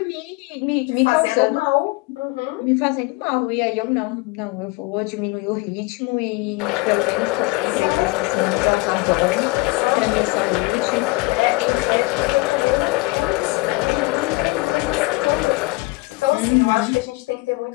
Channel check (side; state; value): right; quieter; 23.5 dB